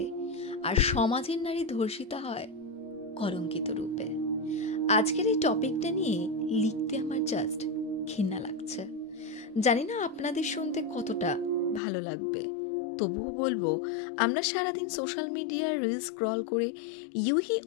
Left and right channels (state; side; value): drops out; right; at 11.8 s